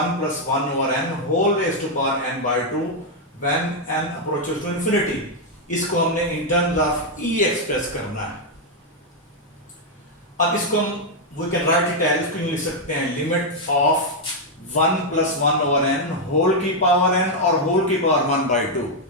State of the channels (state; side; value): normal; both; correlation 0.00